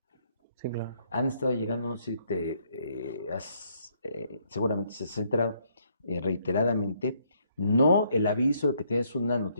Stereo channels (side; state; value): both; inverted; correlation -0.70